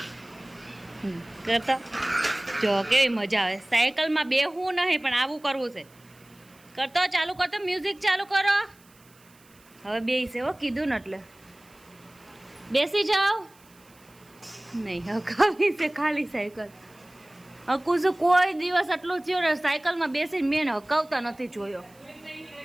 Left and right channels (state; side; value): noise; right; hiss, 28 dB below the sound